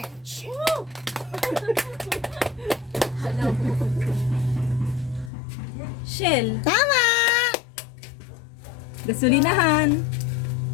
Shell. Tama! Gasolinahan.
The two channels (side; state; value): right; drops out; at 5.3 s